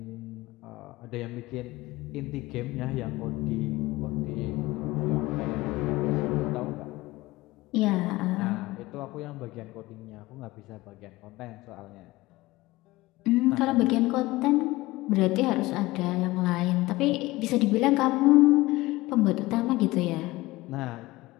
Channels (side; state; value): right; quieter; 19.6 dB